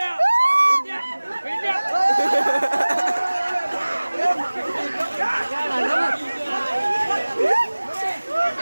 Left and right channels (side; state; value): both; inverted; correlation -1.00